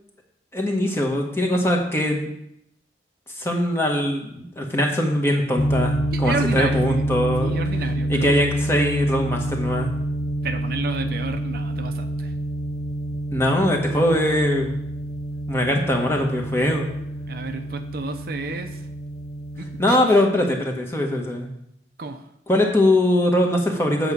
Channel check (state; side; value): normal; both; correlation 0.71